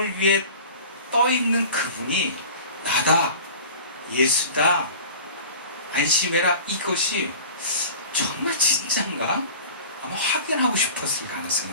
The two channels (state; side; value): inverted; both; correlation -0.40